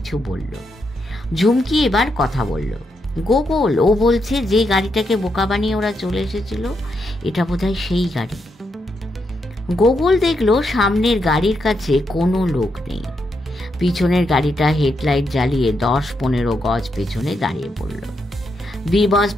বলল। ঝুমকি এবার কথা বলল। গোগল, ও বলছে যে গাড়িটাকে বোকা বানিয়ে ওরা চলে এসেছিল, এটা বোধহয় সেই গাড়ি। গোগল দেখলো সামনের গাড়ির কাছে কোনো লোক নেই। পিছনের গাড়িটা হেডলাইট জ্বালিয়ে 10-15 গজ পেছনে দাঁড়িয়ে পড়ল। বি বস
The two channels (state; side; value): normal; both; correlation 0.81